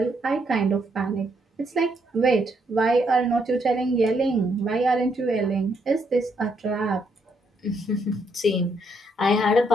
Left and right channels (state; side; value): normal; both; correlation 0.75